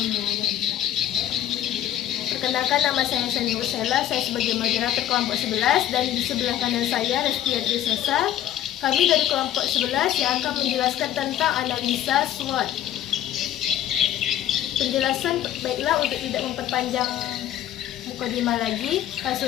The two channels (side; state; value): right; quieter; 11.6 dB